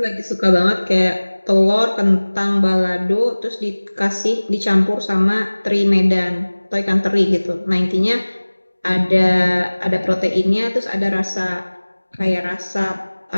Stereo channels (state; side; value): inverted; both; correlation -1.00